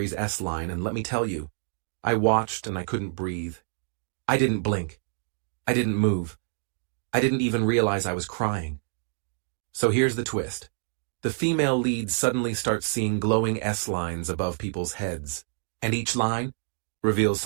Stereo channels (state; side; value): silent; left; digital silence